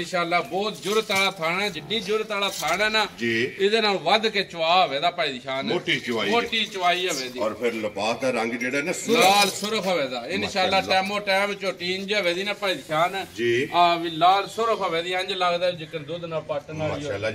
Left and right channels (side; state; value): both; identical; correlation 1.00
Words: ਬਹੁਤ ਜੁਰਤ ਵਾਲਾ ਥਾਣਾ ਹੈ, ਜਿੱਡੀ ਜੁਰਤ ਵਾਲਾ ਥਾਣਾ ਹੈ ਨਾ ਜੀ, ਇਹਦੇ ਨਾਲ ਵੱਧ ਕੇ ਚਵਾ ਹੋਵੇ ਦਾ ਭਾਈ ਦੀ ਸ਼ਾਨ, ਮੋਟੀ ਚਵਾਈ ਮੋਟੀ ਚਵਾਈ ਹੋਵੇ ਦੀ। ਔਰ ਫਿਰ ਲਿਬਾਸ ਦਾ ਰੰਗ ਜਿਹੜਾ ਨਾ ਲਾਲ ਸੁਰਖ ਹੋਵੇ ਦਾ ਇਨਸ਼ਾਅੱਲਾ। ਟਾਈਮੋ ਟਾਈਮ ਝੋਟੀ ਇੰਜ ਹੋਵੇ ਦੀ ਨਾ ਭਾਈ ਦੀ ਸ਼ਾਨ ਜੀ, ਆ ਵੀ ਲਾਲ ਸੁਰਖ ਹੋਵੇ ਦੀ, ਇੰਜ ਲੱਗਦਾ ਜਿਕਰ ਦੁੱਧ ਨਾਲ ਪੱਟਣ ਵਾਲੀ ਮਾਸ਼ਾਅੱਲਾ